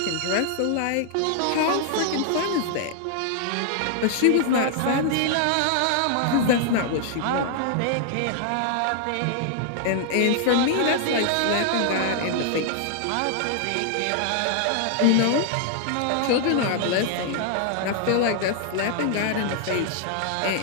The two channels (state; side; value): different; both; correlation 0.00